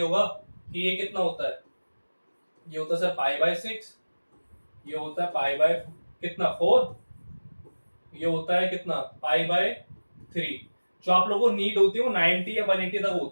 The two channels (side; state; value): both; inverted; correlation -1.00